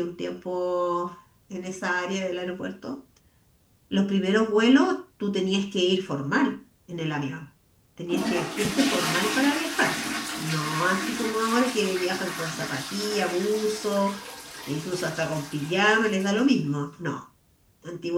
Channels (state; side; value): identical; both; correlation 1.00